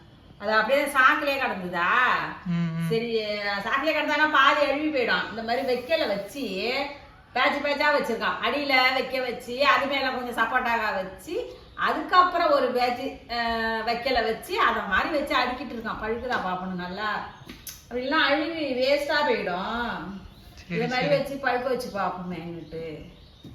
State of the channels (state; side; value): identical; both; correlation 1.00